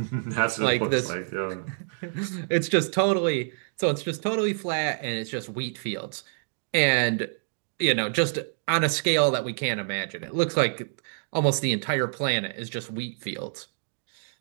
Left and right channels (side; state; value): left; silent; digital silence